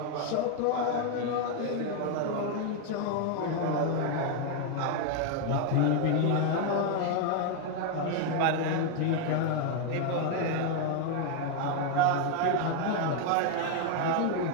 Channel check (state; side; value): different; both; correlation 0.01